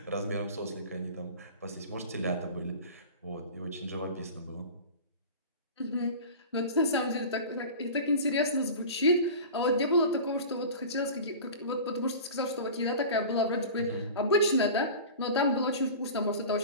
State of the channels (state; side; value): inverted; both; correlation -0.35